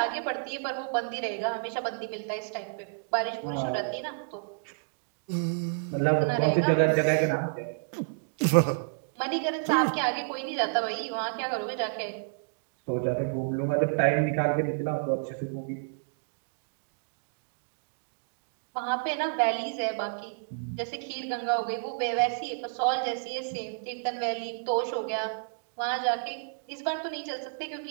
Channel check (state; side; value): silent; left; digital silence